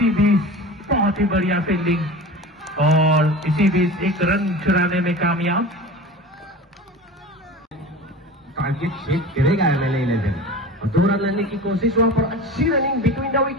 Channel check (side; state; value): both; normal; correlation 0.34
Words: बीच बहुत ही बढ़िया फील्डिंग और इसी बीच एक रन चुराने में कामयाब। टारगेट सेट करेगा एमएलए 11 और 2 रन लेने की कोशिश वहां पर अच्छी रनिंग बिटवीन द